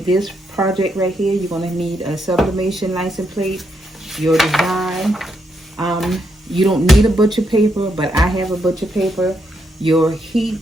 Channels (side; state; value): both; normal; correlation 0.79